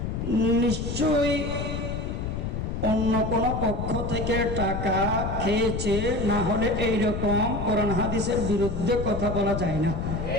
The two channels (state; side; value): noise; left; rumble, 3 dB below the sound